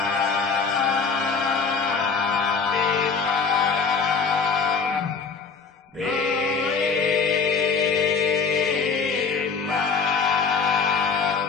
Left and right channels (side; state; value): right; quieter; 5.3 dB